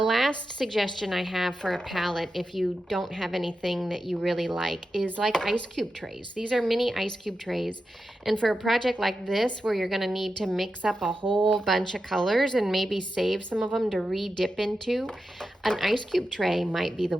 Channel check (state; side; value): normal; both; correlation 0.90